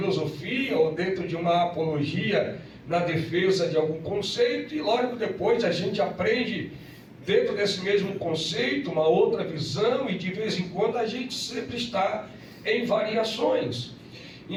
ou dentro de uma apologia na defesa de algum conceito, e logo depois a gente aprende dentro desse mesmo conceito uma outra visão, e de vez em quando a gente sempre está em variações.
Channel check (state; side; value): identical; both; correlation 1.00